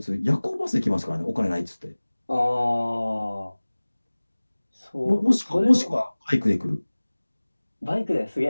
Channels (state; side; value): inverted; both; correlation -1.00